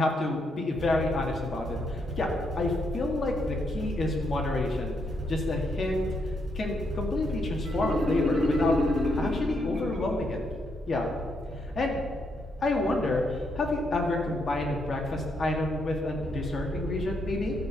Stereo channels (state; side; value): normal; both; correlation 0.78